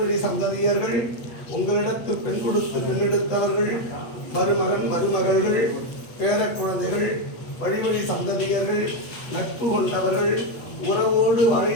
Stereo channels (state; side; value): late; right; 8.3 ms